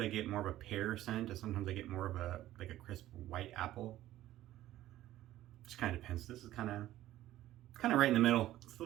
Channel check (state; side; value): quieter; left; 14.3 dB